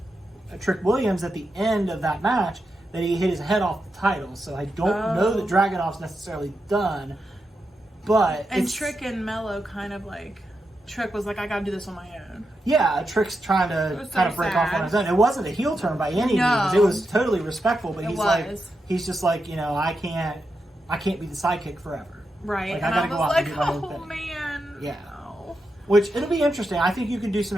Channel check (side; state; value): both; normal; correlation 0.87